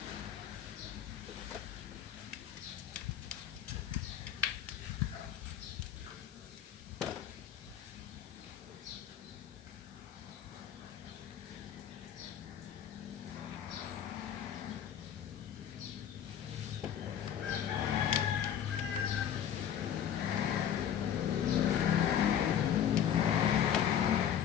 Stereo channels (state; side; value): quieter; right; 9.5 dB